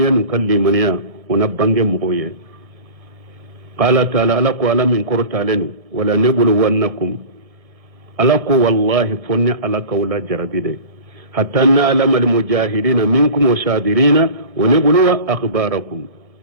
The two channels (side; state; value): left; late; 1.6 ms